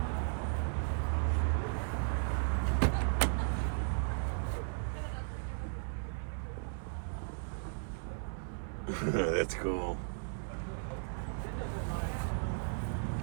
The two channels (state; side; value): silent; left; 54 dB below the other